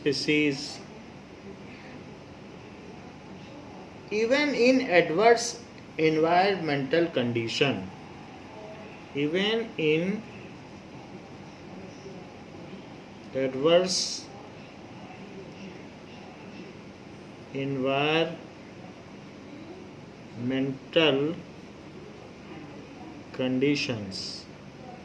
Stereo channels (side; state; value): both; identical; correlation 1.00